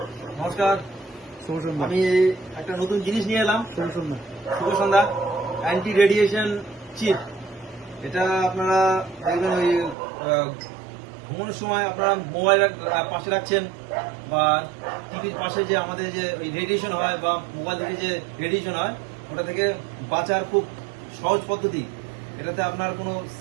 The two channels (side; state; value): left; drops out; at 10.0 s